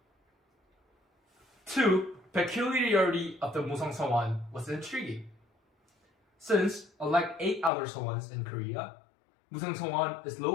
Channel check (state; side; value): drops out; right; at 7.7 s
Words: 2. Peculiarity of the Museong Seowon was intriguing. Since, unlike 8 other Seowons in Korea, Museong Seowon is